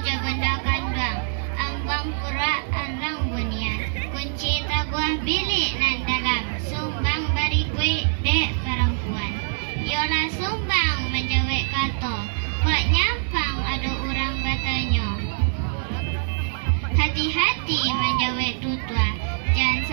je benda kandang, ambang pura andang bunian, kunci taguah bilik nan dalam, Sumbang bari kue dek perempuan. Yola Sumbang menjawab kata, kok nyampang ada orang batanya. Hati-hati menjawab tutua, jangan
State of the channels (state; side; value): silent; left; 62 dB below the other